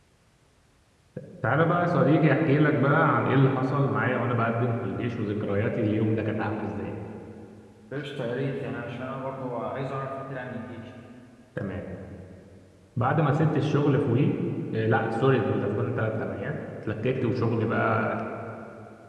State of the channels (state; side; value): identical; both; correlation 1.00